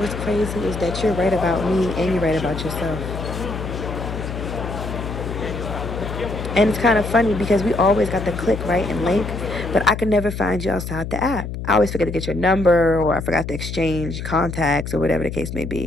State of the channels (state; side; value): noise; left; hum, 6 dB below the sound